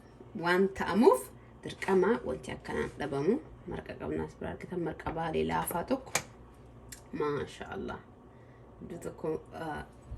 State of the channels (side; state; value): both; identical; correlation 1.00